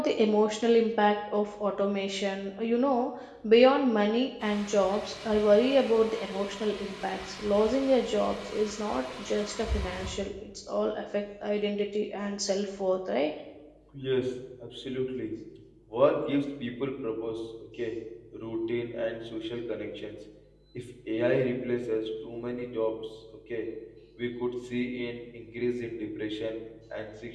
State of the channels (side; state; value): both; identical; correlation 1.00